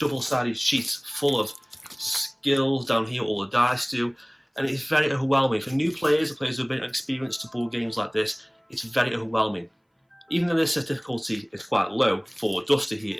sheet full of skills down here, all the dice do, and it's very overwhelming. For new players or players who have been experienced to board games like this, it's very overwhelming. Even though this difficulty is quite low for Duster here,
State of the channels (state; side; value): identical; both; correlation 1.00